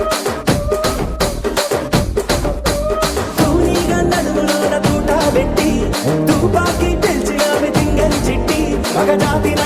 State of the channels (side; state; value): both; identical; correlation 1.00